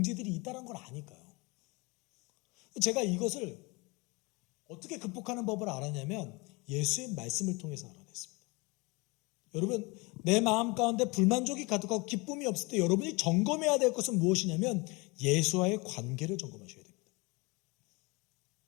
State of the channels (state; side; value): quieter; right; 26.6 dB